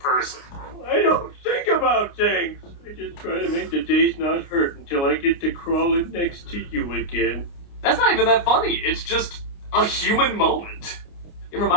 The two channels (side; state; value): right; late; 29 ms